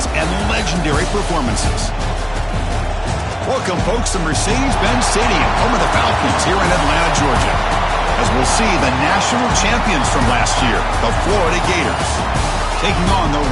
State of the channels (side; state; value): both; identical; correlation 1.00